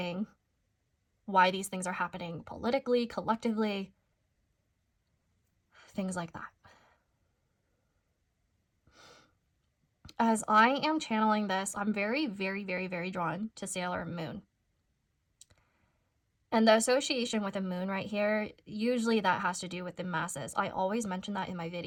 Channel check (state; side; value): identical; both; correlation 1.00